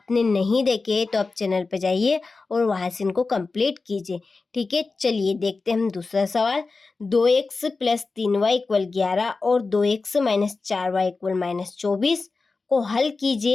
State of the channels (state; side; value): quieter; right; 4.0 dB